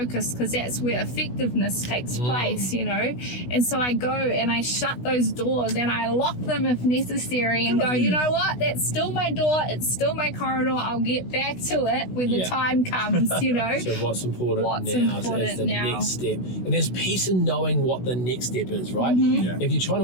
Because that's where effectiveness takes place, And so I go and I shut those doors and I lock them if necessary and go, you know what? That's still my door. It's still my corridor. I'll get back to it when the time comes, So what's important now is the next step. And there's peace in knowing what the next step is, right? If you're trying to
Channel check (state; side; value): late; right; 16 ms